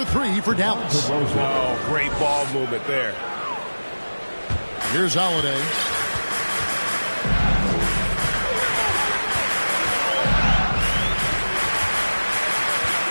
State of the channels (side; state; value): both; inverted; correlation -1.00